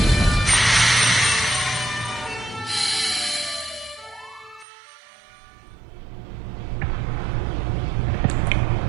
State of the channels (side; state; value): left; drops out; at 4.7 s